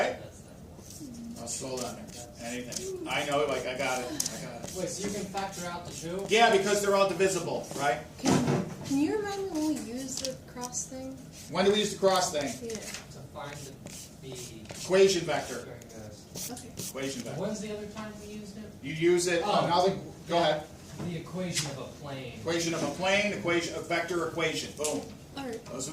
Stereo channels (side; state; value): both; identical; correlation 1.00